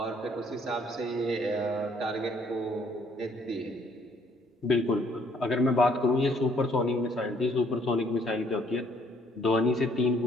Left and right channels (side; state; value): both; normal; correlation 0.64